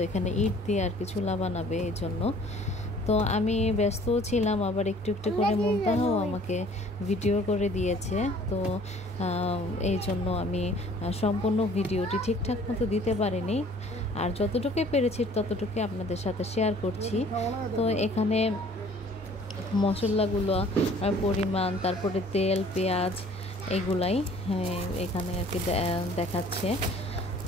এখানে ইট দিয়ে আর কি চুলা বানাবে, এই জন্য। তো আমি ব্যস্তও ছিলাম, আবার একটু একটু করে মুনতাহাও আমাকে ভিডিও করে দিয়েছে। তো এই জন্য আমি সম্পূর্ণ ভিডিওটি ঠিকঠাক মতো দিতে পারিনি, আর যতটুকুই পেরেছি ততটুকুই আপনাদের সাথে শেয়ার করছি। তো এখানে মশলাগুলো পরিমাণ, তারপরে তেল, পেঁয়াজ, এগুলাই এখানে আর কি দেখাচ্ছে।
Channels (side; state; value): both; normal; correlation 0.54